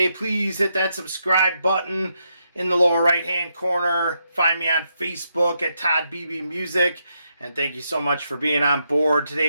Please hit that subscribe button in the lower right hand corner. Find me on Facebook at Todd Beebe Music. And thank you so much for being on board. Today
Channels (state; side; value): inverted; both; correlation -0.81